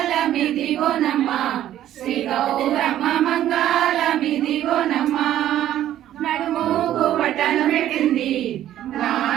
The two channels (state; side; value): quieter; left; 12.2 dB